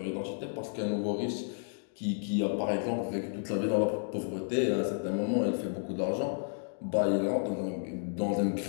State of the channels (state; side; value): silent; right; digital silence